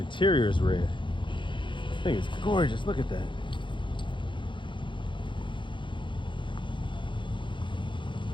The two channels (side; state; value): right; late; 0.23 ms